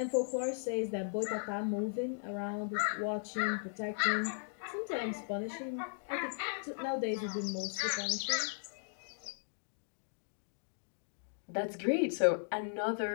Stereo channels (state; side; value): silent; right; digital silence